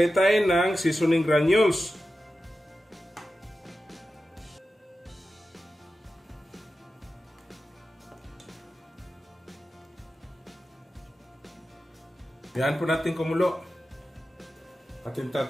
tayo ng seasoning granules. Yan po natin kumulo. Ating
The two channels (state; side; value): normal; both; correlation 0.93